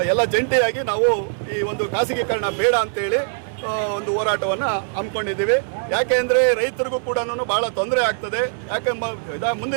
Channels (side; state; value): left; silent; 65 dB below the other